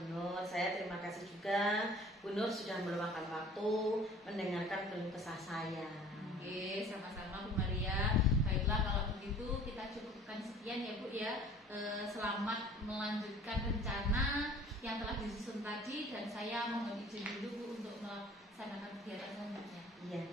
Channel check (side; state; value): both; normal; correlation 0.49